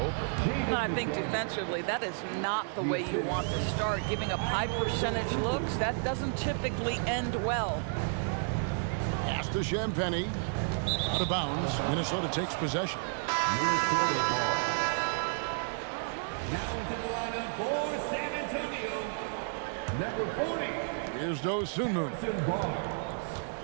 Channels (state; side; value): silent; left; 57 dB below the other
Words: I think defensively, that is not the way you want to start. Giving up high percentage looks, that doesn't typically end well. Pass to Champagny. Out of bounds. Minnesota takes possession. Minnesota ball. Now into the lineup for San Antonio. Number 40. Here's Dosunmu.